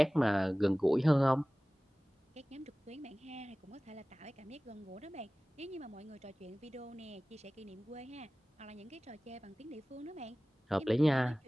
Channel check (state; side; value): normal; both; correlation 0.98